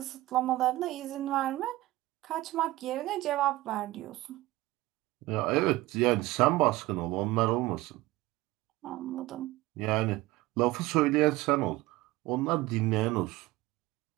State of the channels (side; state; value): left; quieter; 18.4 dB